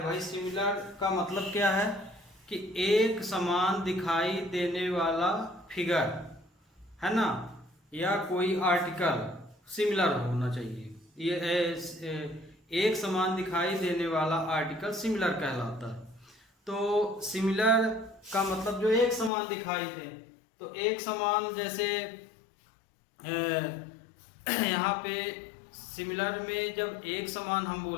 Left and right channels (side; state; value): right; drops out; at 19.3 s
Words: भाई। सिमिलर का मतलब क्या है कि एक समान दिखाई देने वाला फिगर है ना, या कोई आर्टिकल सिमिलर होना चाहिए। ये एक समान दिखाई देने वाला आर्टिकल सिमिलर कहलाता है। तो सिमिलर का मतलब जो एक समान दिखाई दे, तो एक समान जैसे यहाँ पे सिमिलर में जब एक समान हम